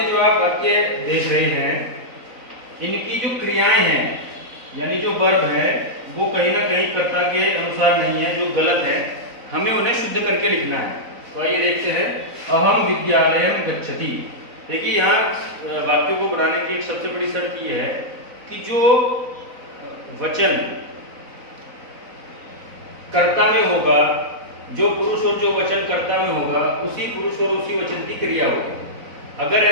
जो आप वाक्य देख रहे हैं, इनकी जो क्रियाएं हैं यानी जो वर्ब है वो कहीं ना कहीं कर्ता के अनुसार नहीं है, जो गलत है, हमें उन्हें शुद्ध करके लिखना है। तो आइए देखते हैं। अहम विद्यालयम गच्छति। देखिए यहाँ वाक्यों को बनाने की एक सबसे बड़ी शर्त यह है कि जो वचन कर्ता में होगा, जो पुरुष और जो वचन कर्ता में होगा, उसी पुरुष और उसी वचन की क्रिया होगी। अगर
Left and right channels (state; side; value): late; left; 4.0 ms